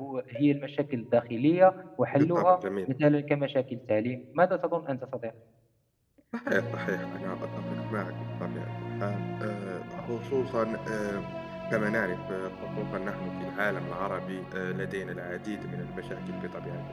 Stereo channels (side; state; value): both; identical; correlation 1.00